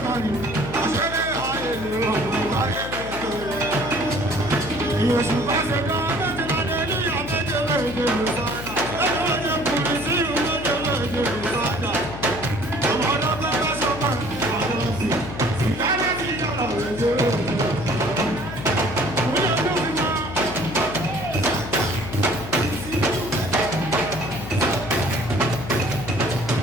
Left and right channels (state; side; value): noise; left; hum, 10 dB below the sound